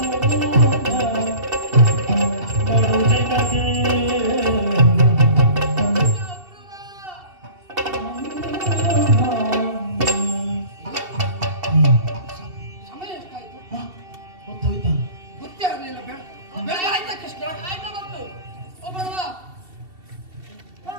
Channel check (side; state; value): left; late; 2.7 ms